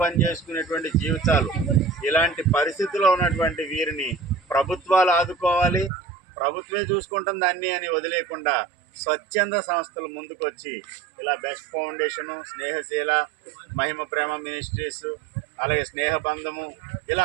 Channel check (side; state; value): left; drops out; at 5.9 s